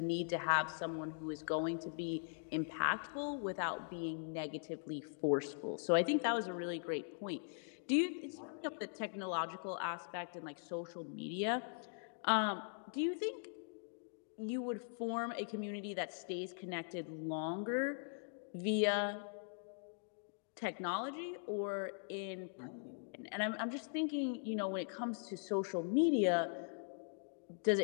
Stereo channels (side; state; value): right; silent; digital silence